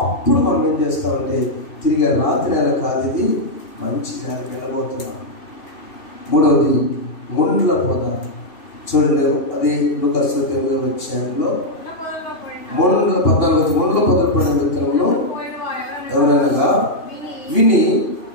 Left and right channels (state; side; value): late; right; 3.1 ms